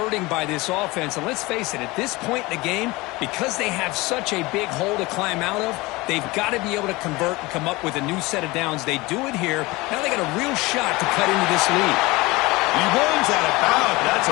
by this offense. And let's face it, at this point in the game, because they have such a big hole to climb out of, they've got to be able to convert and come up with a new set of downs. They do it here. Now they got a real shot to cut into this lead. He runs out of bounds. That's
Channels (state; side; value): quieter; right; 22.1 dB